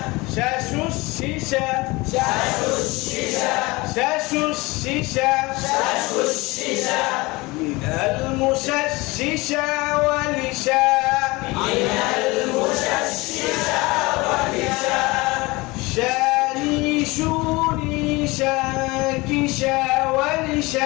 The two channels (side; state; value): right; quieter; 23.0 dB